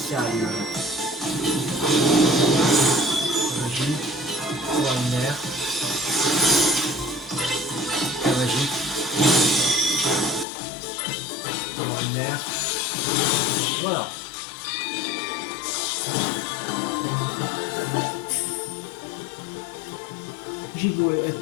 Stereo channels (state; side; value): drops out; right; at 10.5 s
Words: Magique. Extraordinaire. Très magique. Extraordinaire. Voilà. J'ai beau